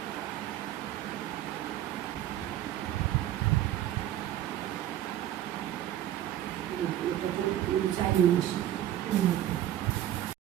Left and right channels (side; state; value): left; quieter; 12.4 dB